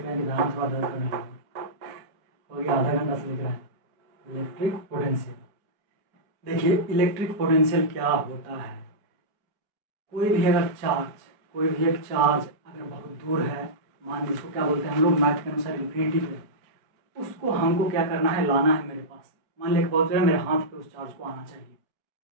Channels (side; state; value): left; late; 5.2 ms